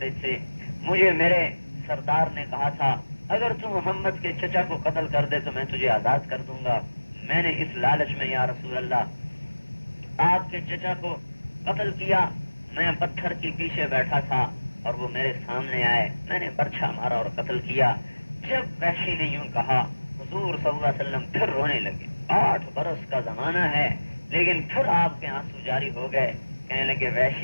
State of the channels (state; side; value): inverted; both; correlation -1.00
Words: تھے۔ مجھے میرے سردار نے کہا تھا اگر تم محمد کے چچا کو قتل کر دے تو میں تجھے آزاد کر دوں گا۔ میں نے اس لالچ میں یا رسول اللہ آپ کے چچا کو قتل کیا۔ میں پتھر کے پیچھے بیٹھا تھا اور وہ میرے سامنے آئے، میں نے برچھا مارا اور قتل کیا۔ جب وحشی نے یوں کہا حضور صلی اللہ علیہ وسلم پھر رونے لگے۔ 8 برس کا زمانہ ہے لیکن پھر آپ کے آنسو جاری ہو گئے، کہنے لگے